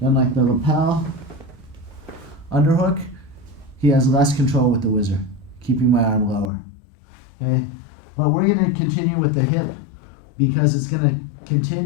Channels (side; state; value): right; drops out; at 6.5 s